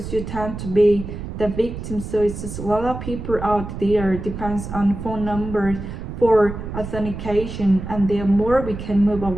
You tend to be the victim. So it's just a lot of people out there depends on phone numbers for authentication, and the more we can move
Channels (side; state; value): right; noise; rumble, 8 dB below the sound